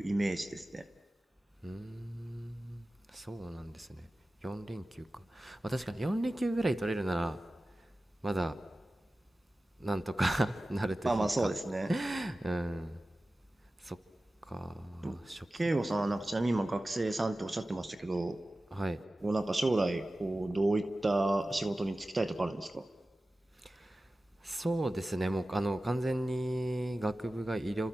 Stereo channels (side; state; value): both; normal; correlation 0.96